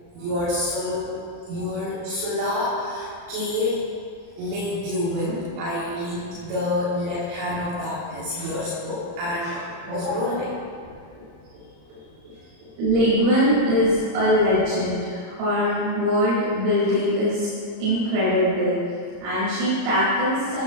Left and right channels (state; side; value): late; left; 35 ms